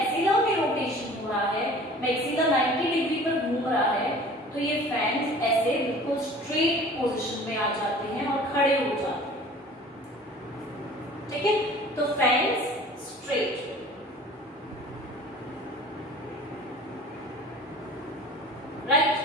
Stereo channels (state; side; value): normal; both; correlation 0.45